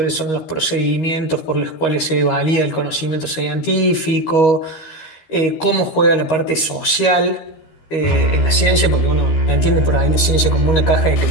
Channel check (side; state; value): right; late; 13 ms